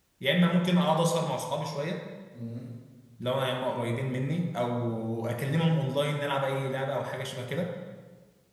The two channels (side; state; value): both; identical; correlation 1.00